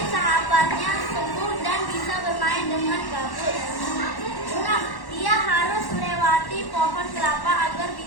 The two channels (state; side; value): late; right; 1.1 ms